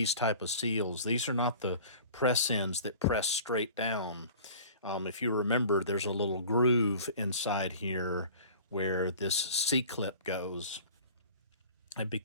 type of seals. These are not the press ends that press straight down. If you remember, there's a little groove inside here where this C-clip goes. And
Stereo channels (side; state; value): both; inverted; correlation -0.43